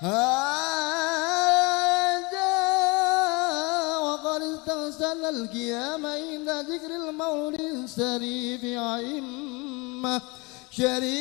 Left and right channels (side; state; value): right; quieter; 26.9 dB